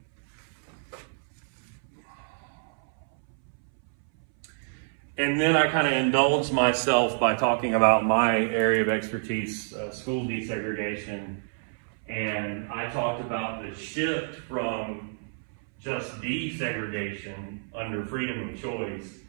And then I kind of indulged myself by talking about my area of expertise, school desegregation. And I talked about the shift from just desegregation under freedom of choice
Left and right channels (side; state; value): left; silent; 59 dB below the other